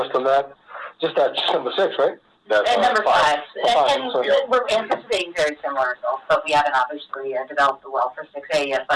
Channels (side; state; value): both; identical; correlation 1.00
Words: on that. Just number 6, right? And number 5. And so, we're anticipating very similar results, but we haven't obviously developed the well for 6A yet.